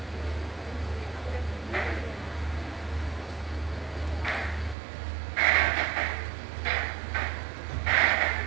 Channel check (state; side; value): drops out; left; at 4.8 s